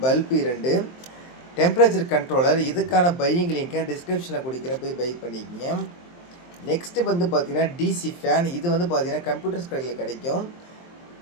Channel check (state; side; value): late; right; 23 ms